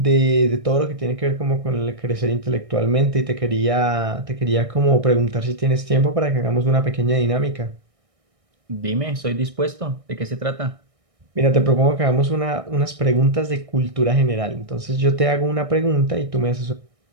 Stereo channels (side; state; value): left; late; 1.6 ms